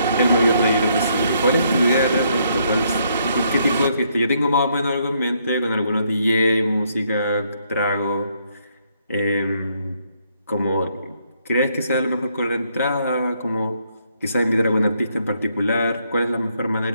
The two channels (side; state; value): both; inverted; correlation -0.72